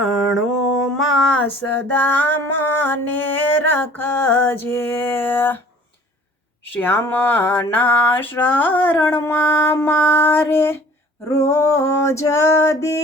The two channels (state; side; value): normal; both; correlation 0.51